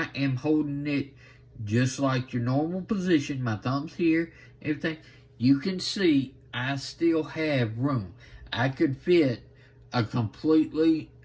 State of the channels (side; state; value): both; identical; correlation 1.00